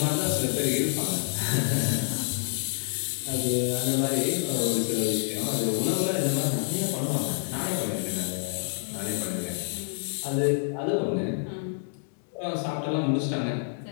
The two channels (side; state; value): right; silent; digital silence